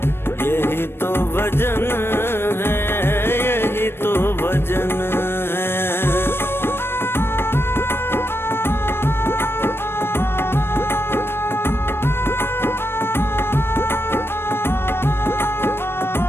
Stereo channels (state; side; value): late; right; 0.11 ms